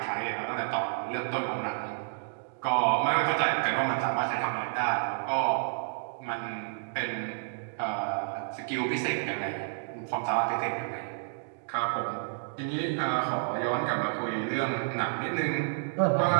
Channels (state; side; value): silent; left; digital silence